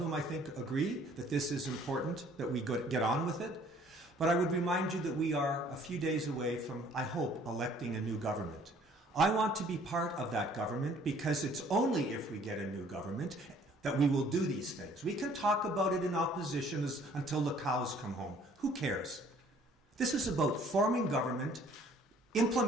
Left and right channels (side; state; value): both; normal; correlation 0.57